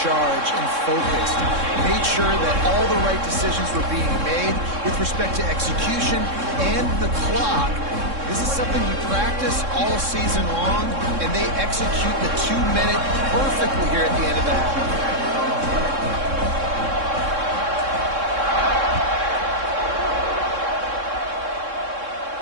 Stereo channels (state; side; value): late; left; 3.6 ms